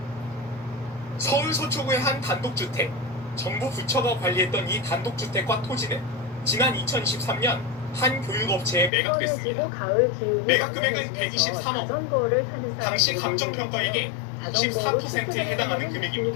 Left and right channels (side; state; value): right; drops out; at 8.9 s